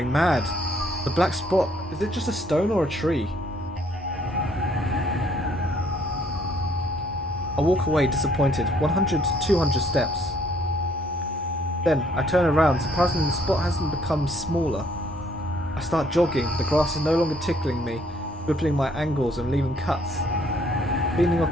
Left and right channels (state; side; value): normal; both; correlation 0.65